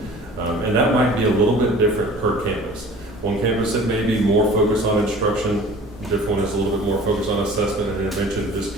And that might be a little bit different per campus. One campus it may be more focused on instruction, a different one is a little bit more focused on assessment and intervention. It just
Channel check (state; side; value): normal; both; correlation 0.45